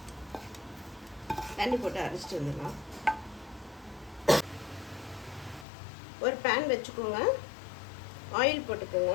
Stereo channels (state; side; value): drops out; right; at 5.7 s